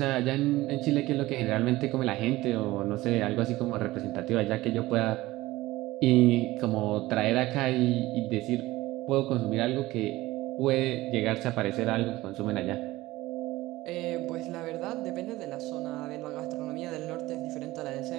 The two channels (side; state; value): left; quieter; 18.1 dB